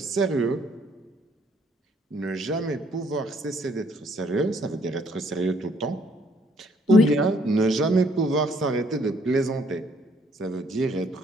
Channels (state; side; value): normal; both; correlation 0.65